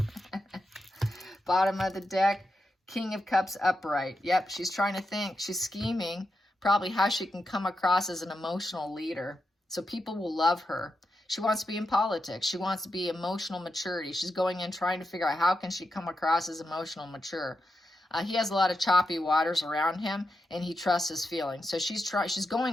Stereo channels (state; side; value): normal; both; correlation 0.87